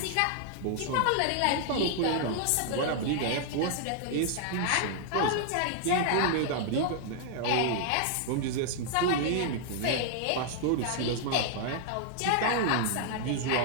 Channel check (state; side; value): different; both; correlation 0.00